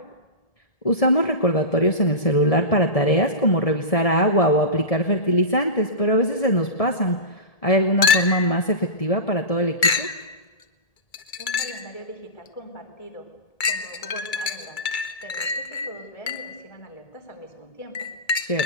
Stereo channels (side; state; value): right; late; 1.7 ms